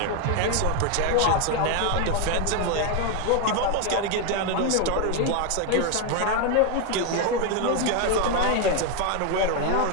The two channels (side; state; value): both; different; correlation 0.02